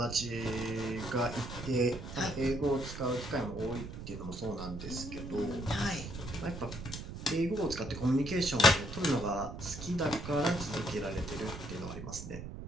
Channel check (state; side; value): noise; right; rumble, 9 dB below the sound